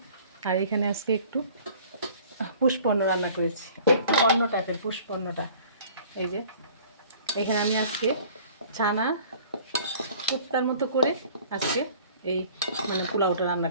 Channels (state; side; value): inverted; both; correlation -0.49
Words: আর এখানে আজকে একটু পুষ্পন্ন রান্না করেছি, একটু অন্য টাইপের পুষ্পন্নটা। এই যে এখানে আমি আজকে ছানা কোপ্তার মতো করে আজকে এই পোলাওটা রান্না